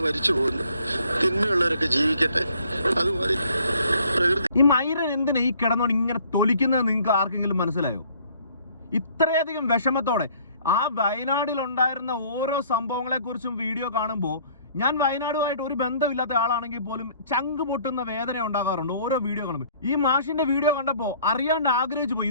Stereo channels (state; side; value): inverted; both; correlation -0.58